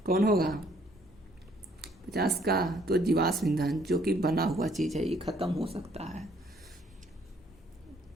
कौन होगा 50 का, तो जीवाश्म ईंधन जो कि बना हुआ चीज है ये खत्म हो सकता है।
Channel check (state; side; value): normal; both; correlation 0.64